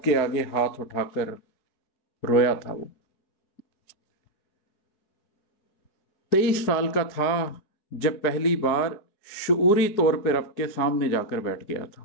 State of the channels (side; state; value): right; late; 4.8 ms